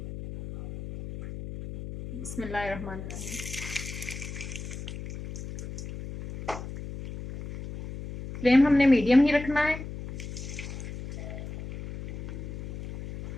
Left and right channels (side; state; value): left; noise; hum, 9 dB below the sound